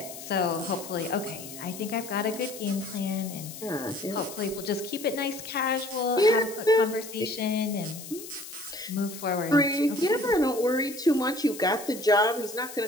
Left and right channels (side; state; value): left; noise; hiss, 13 dB below the sound